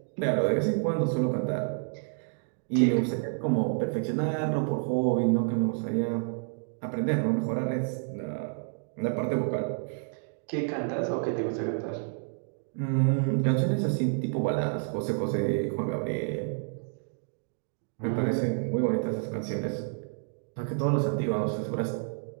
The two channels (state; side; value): silent; left; 58 dB below the other